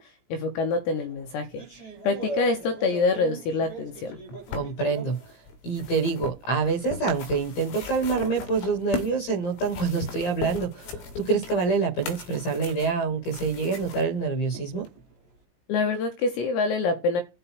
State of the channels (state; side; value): late; right; 17 ms